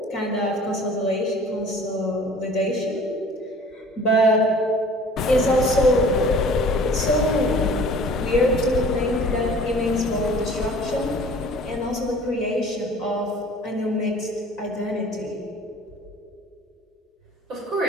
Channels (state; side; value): normal; both; correlation 0.48